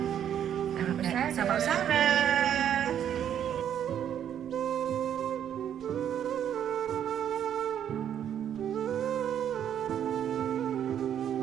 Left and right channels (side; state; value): left; quieter; 9.6 dB